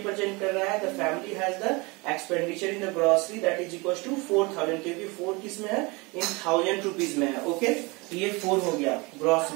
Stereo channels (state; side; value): quieter; left; 26.5 dB